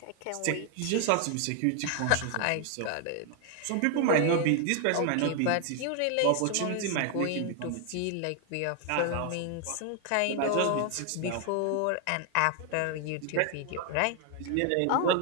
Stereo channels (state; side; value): different; both; correlation 0.01